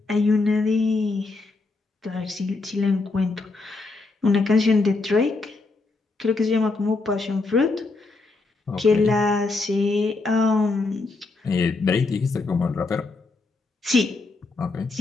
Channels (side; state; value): right; quieter; 3.6 dB